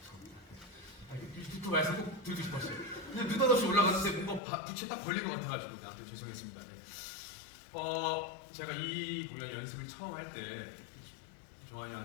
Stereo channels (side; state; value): right; drops out; at 4.4 s